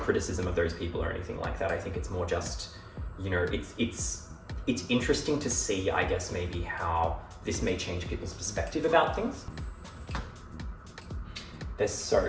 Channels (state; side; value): identical; both; correlation 1.00